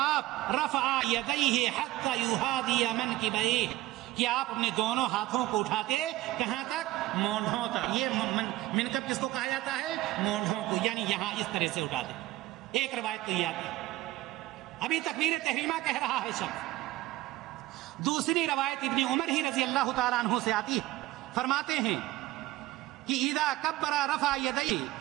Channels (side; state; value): left; quieter; 16.9 dB